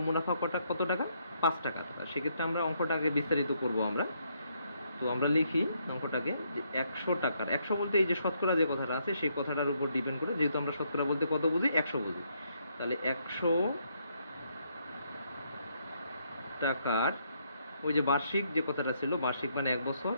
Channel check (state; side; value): inverted; both; correlation -0.74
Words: মুনাফা কত টাকা, 5 টাকা। সেক্ষেত্রে আমরা অঙ্কটা আগে বিস্তারিত করব আমরা। তো আমরা লিখি অঙ্কটাকে যে 100 টাকার, 100 বলতে এই যে শতকরা যে কথাটা আছে সেই কথাটার উপর ডিপেন্ড করে, যেহেতু আমরা শতকরা বলতে কত বুঝি, 100 বুঝি। তাহলে 100 টাকার ওই যে বার্ষিক যে কথাটা ছিল, বার্ষিক মানে 1 বছর,